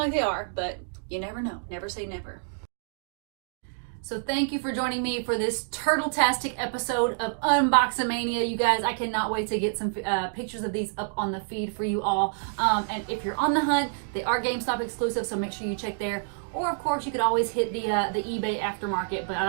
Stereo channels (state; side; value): silent; left; digital silence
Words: they are, but you never know. Never say never. So thank you for joining me for this turtle-tastic episode of Unboxamania. You guys, I cannot wait to get some pictures of these up on the feed for you all. And if you're on the hunt, they are GameStop exclusive, so make sure you check there. Or of course, you could always hit the eBay aftermarket, but